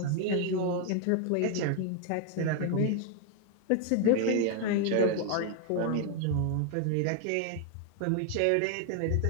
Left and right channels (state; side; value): different; both; correlation 0.01